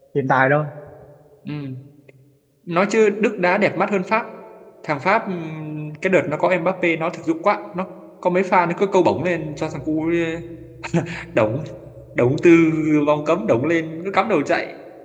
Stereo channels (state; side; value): identical; both; correlation 1.00